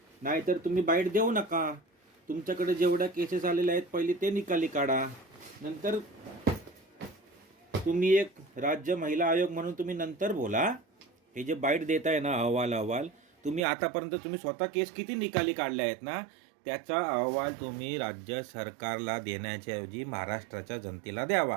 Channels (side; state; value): left; drops out; at 13.6 s